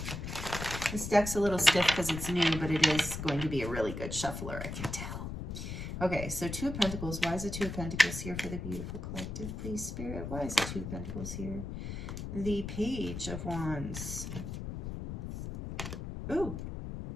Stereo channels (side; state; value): left; noise; rumble, 6 dB below the sound